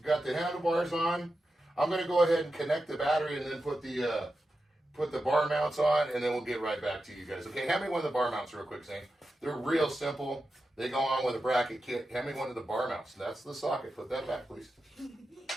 handlebars on. I'm going to go ahead and connect the battery and then put the bar mounts on, and then we'll get right back to you guys. Okay, hand me one of the bar mounts real quick, Zane. They're real simple. They go on with a bracket kit. Hand me one of the bar mounts. That's the socket. Put that back, please.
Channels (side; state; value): both; normal; correlation 0.90